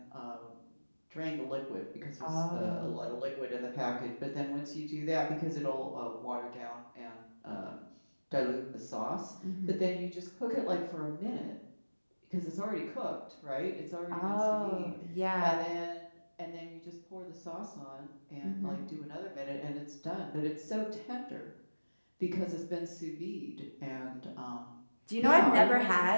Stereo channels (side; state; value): both; inverted; correlation -1.00